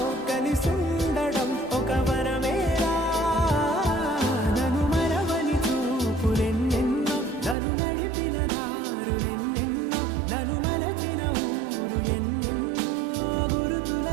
కలిసుండడం ఒక వరమేరా నన్ను మరవని చూపులెన్నెన్నో నన్ను నడిపిన దారులెన్నెన్నో నన్ను మలచిన ఊరు ఎన్నెన్నో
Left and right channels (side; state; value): left; drops out; at 7.6 s